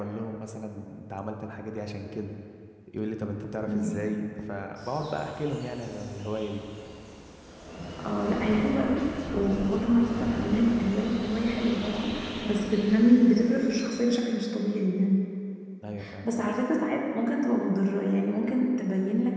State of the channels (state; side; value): identical; both; correlation 1.00